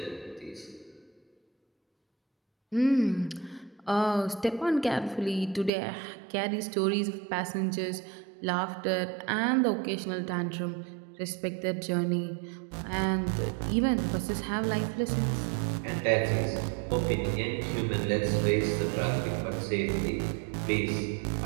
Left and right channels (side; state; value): left; drops out; at 5.7 s